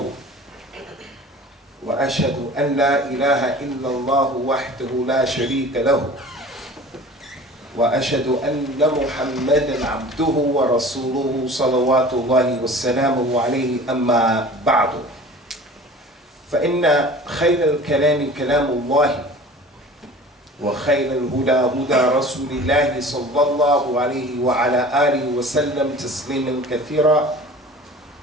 وأشهد أن لا إله إلا الله وحده لا شريك له وأشهد أن محمدًا عبده ورسوله صلوات الله وسلامه عليه أما بعد فإن خير الكلام كلام الله وخير الهدى هدى رسول الله صلى الله عليه وعلى آله وسلم تسليما كثيرا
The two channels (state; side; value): normal; both; correlation 0.42